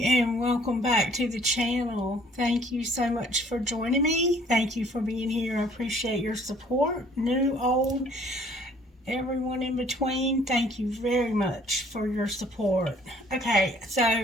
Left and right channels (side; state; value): both; normal; correlation 0.58